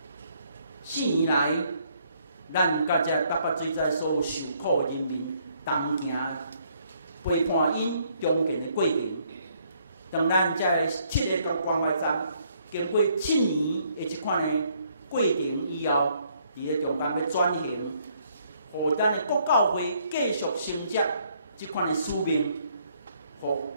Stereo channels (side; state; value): both; inverted; correlation -0.68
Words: 4年来，咱甲这88水灾所有受苦的人民，同行陪伴因中间的过程。当咱这7个观光外站经过7年的这款的过程以后，伫个中间要转型，互咱的国教会继续承接这款的使命，互